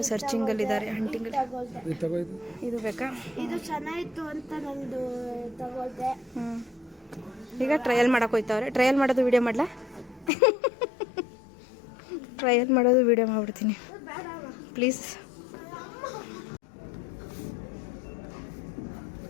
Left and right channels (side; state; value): right; drops out; at 10.3 s